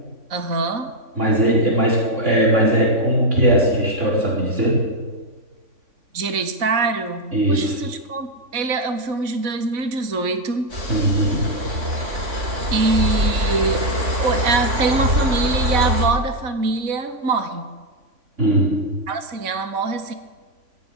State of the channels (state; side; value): late; left; 3.5 ms